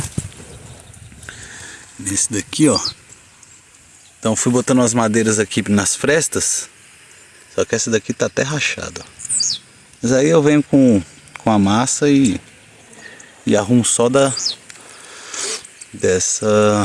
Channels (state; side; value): identical; both; correlation 1.00